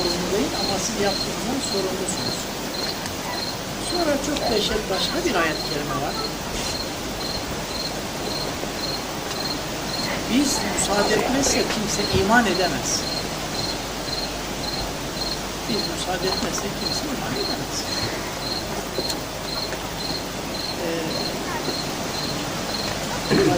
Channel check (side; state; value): both; identical; correlation 1.00